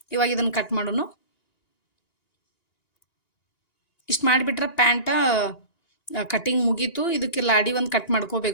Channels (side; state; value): right; late; 1.9 ms